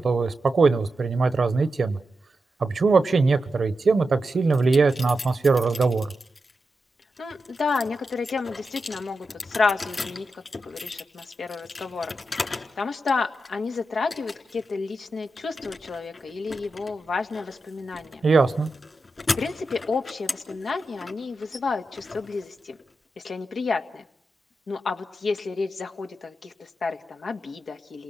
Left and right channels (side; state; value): both; normal; correlation 0.89